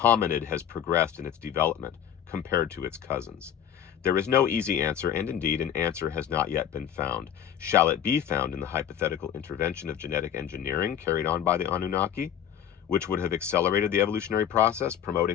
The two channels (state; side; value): quieter; right; 9.5 dB